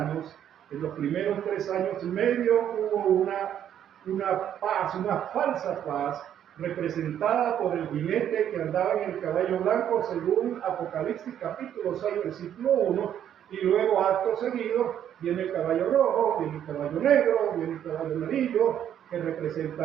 en los primeros 3 años y medio hubo una paz, una falsa paz, representada por el jinete que andaba en el caballo blanco, según Apocalipsis capítulo 6, versículo 1, y luego acto seguido viene el caballo rojo, viene el caballo negro, viene el caballo amarillo, que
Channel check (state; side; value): quieter; left; 10.0 dB